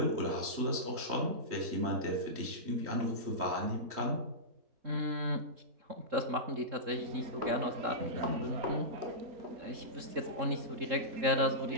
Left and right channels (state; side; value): late; left; 3.7 ms